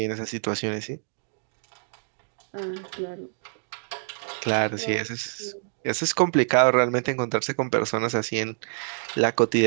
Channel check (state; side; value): silent; left; digital silence